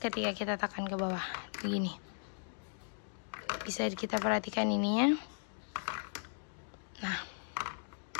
kita tekan ke bawah. Begini. Bisa kita perhatikan ininya. Nah.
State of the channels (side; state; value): right; silent; digital silence